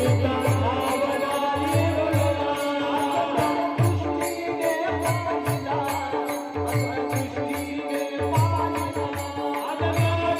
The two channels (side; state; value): both; identical; correlation 1.00